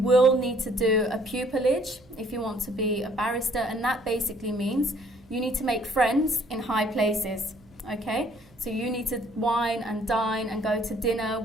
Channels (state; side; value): noise; right; hum, 28 dB below the sound